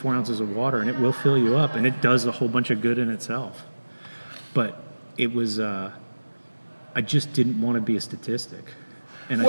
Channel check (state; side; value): inverted; both; correlation -1.00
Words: ounces of water, and it will fill you up, and it does a whole bunch of good in itself. But it was, I just didn't want to be a statistic. And